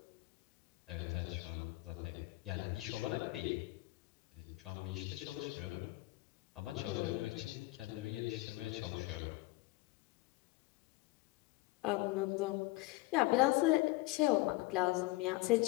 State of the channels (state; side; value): quieter; right; 20.7 dB